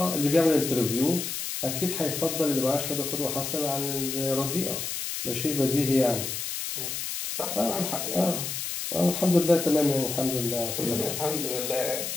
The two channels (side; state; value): left; noise; hiss, 4 dB below the sound